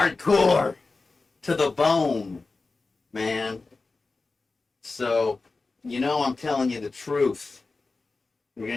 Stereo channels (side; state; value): right; quieter; 3.8 dB